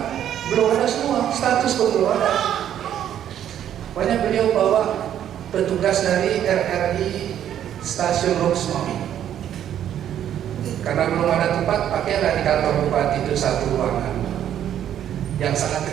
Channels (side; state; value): left; quieter; 10.4 dB